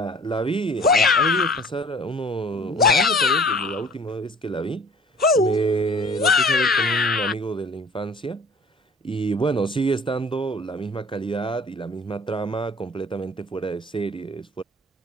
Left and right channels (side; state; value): both; normal; correlation 0.48